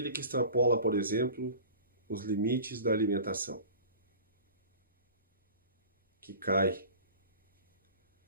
que extrapola, por exemplo, os limites da alimentação, que cai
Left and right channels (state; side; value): inverted; both; correlation -0.40